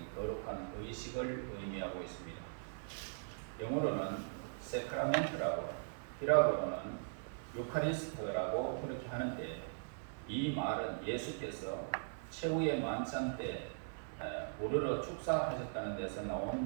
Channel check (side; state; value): left; silent; 51 dB below the other